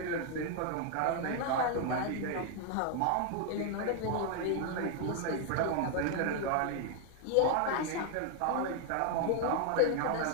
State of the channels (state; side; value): different; both; correlation 0.00